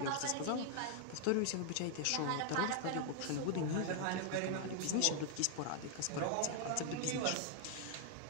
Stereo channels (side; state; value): both; different; correlation 0.00